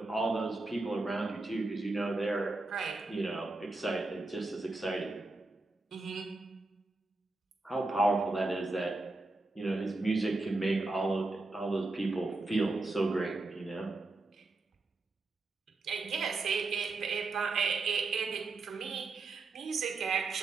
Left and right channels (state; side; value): quieter; left; 3.2 dB